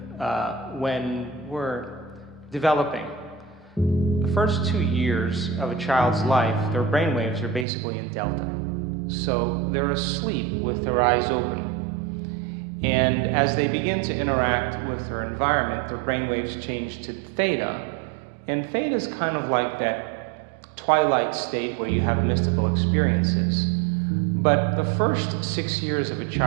when we're developing, the first 2 years of a child's life, their brainwaves are basically in delta. So they're asleep with their eyes open. And as they begin to interact with their environment, their brainwaves change to theta. And theta is kind of like that twilight state where you have mystical experiences. But the first 6 years of a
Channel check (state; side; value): drops out; left; at 7.7 s